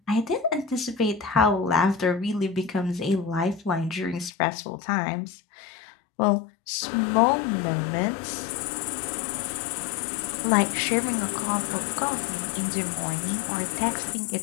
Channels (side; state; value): right; drops out; at 4.3 s